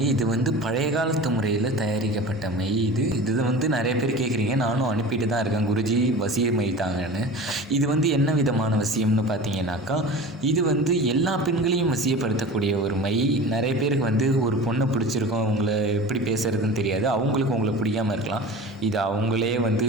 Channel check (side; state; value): both; normal; correlation 0.36